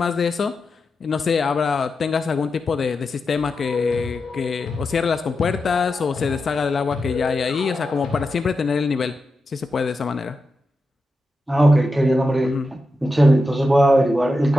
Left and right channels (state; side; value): normal; both; correlation 0.89